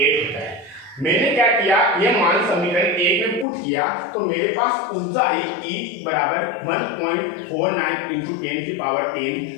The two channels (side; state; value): right; drops out; at 3.5 s